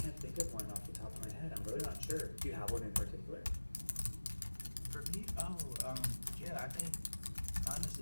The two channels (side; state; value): both; inverted; correlation -1.00